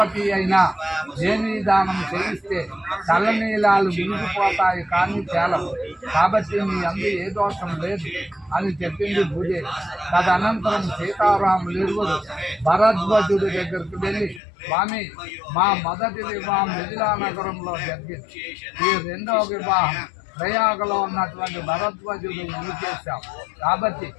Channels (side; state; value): right; drops out; at 14.4 s